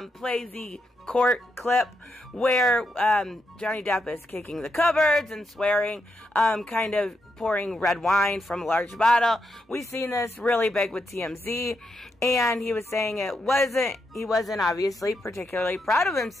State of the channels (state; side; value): normal; both; correlation 0.82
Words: play the court clip where Johnny Depp is kicking the cupboards and swearing, kind of pouring red wine from a large bottle. We've seen this really big with TMZ, and he was saying he wasn't obviously particularly proud of